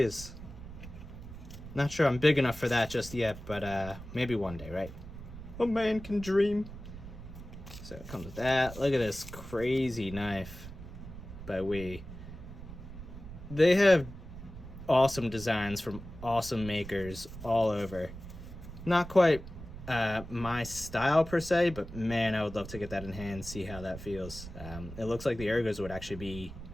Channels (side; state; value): right; noise; rumble, 13 dB below the sound